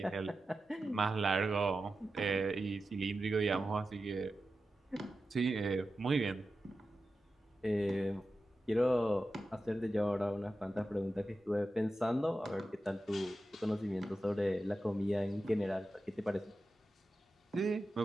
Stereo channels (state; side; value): normal; both; correlation 0.92